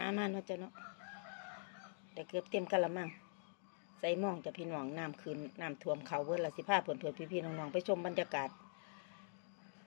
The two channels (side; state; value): right; silent; digital silence